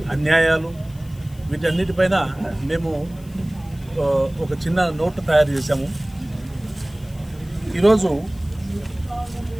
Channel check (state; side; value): noise; left; hiss, 25 dB below the sound